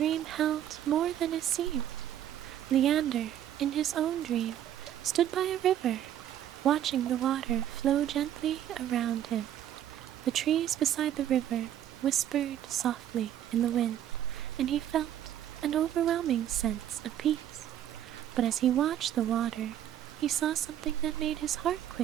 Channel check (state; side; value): quieter; left; 11.0 dB